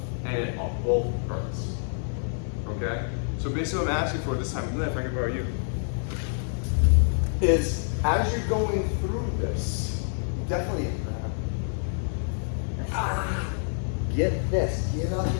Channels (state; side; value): silent; right; 58 dB below the other